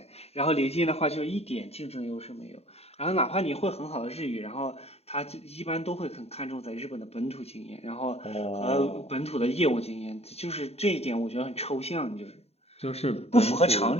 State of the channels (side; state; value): right; late; 0.30 ms